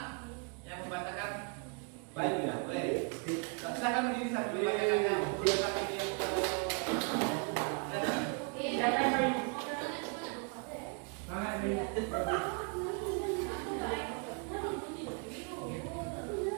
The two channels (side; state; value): left; quieter; 36.9 dB